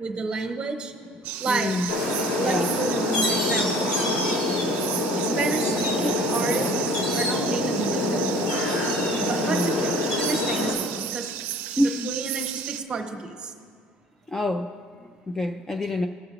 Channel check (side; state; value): both; normal; correlation 0.51